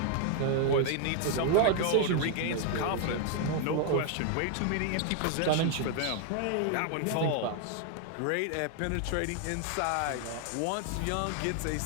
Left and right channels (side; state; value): both; different; correlation 0.00